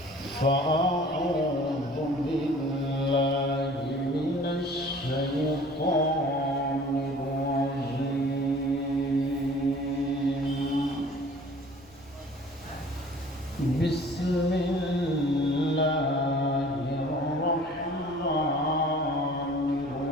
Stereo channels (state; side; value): noise; left; rumble, 28 dB below the sound